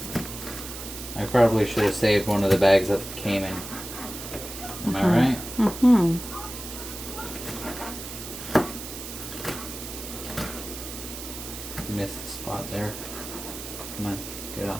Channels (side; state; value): right; noise; hiss, 10 dB below the sound